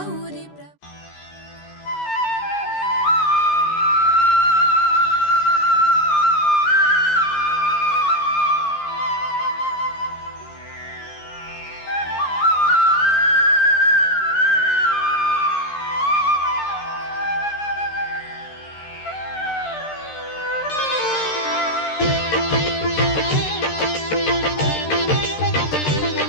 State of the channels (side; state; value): right; late; 13 ms